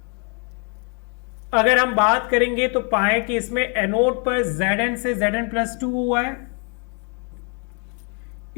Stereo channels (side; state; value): right; quieter; 38.2 dB